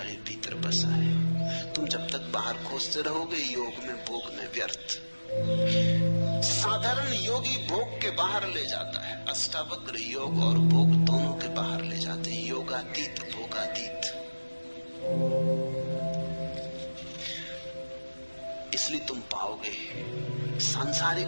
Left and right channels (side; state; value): both; inverted; correlation -1.00